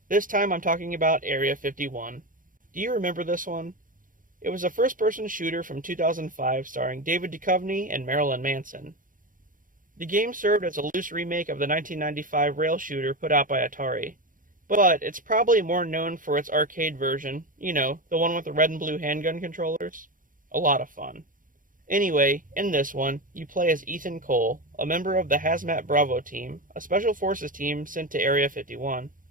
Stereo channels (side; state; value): left; late; 0.39 ms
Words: This time I'm talking about Area 51. Do you remember this one? It was a first-person shooter from 2005 starring David Duchovny and Marilyn Manson. The game served as a loose remake of the 1995 rail shooter put out by Atari, but it's probably more known for its arcade version, the one with the red and blue handgun controllers. A lot of fun. Anyway, in this one, you play as Ethan Cole, a member of the Hazmat Bravo team, a special forces team sent to Area 51.